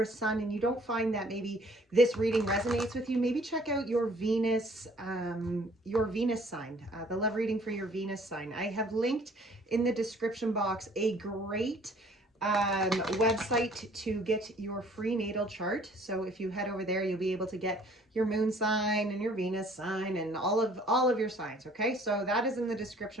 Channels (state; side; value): normal; both; correlation 0.56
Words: Sun and you don't find that maybe this reading resonates with you, maybe check out your Venus sign, the love reading for your Venus sign. I have linked in the description box a great website to get your free natal chart. So if you head over there, you'll be able to get your moon sign and your Venus sign and all of your signs. Okay, so that is in the